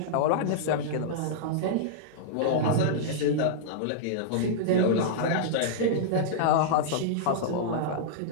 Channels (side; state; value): both; different; correlation -0.02